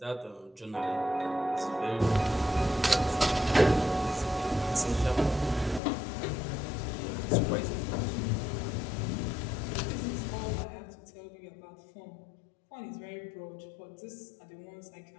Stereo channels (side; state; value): right; drops out; at 5.8 s